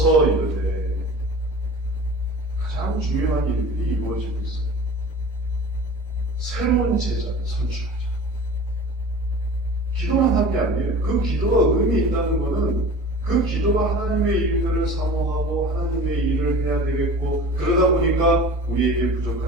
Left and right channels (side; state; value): both; normal; correlation 0.40